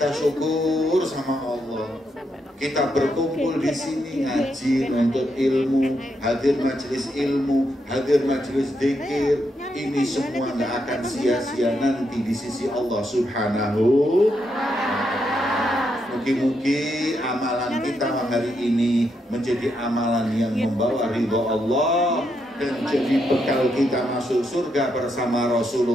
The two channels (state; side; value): normal; both; correlation 0.80